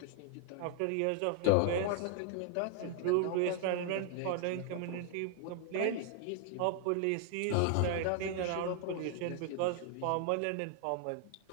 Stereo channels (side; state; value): both; different; correlation 0.00